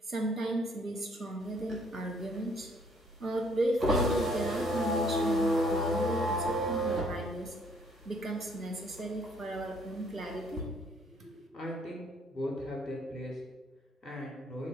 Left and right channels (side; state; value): both; normal; correlation 0.64